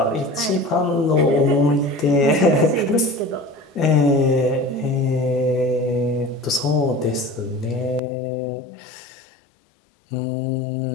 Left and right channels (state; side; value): drops out; right; at 8.0 s